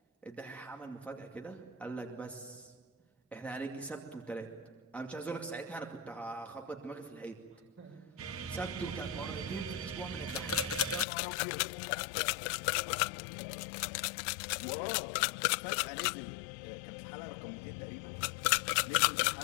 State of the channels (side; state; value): right; drops out; at 11.1 s